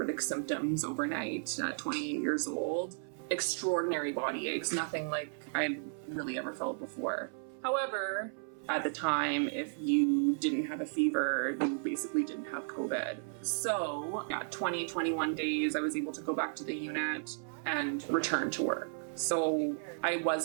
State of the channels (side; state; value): left; silent; 55 dB below the other